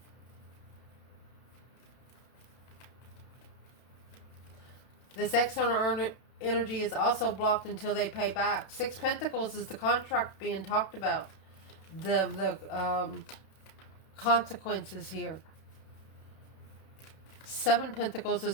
This external energy is also blocked until they pay back. Six Pentacles is the contract being talked about. The consequences here. Seven Pentacles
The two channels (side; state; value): right; late; 31 ms